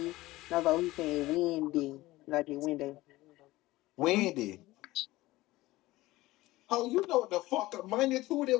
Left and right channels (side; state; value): right; quieter; 18.3 dB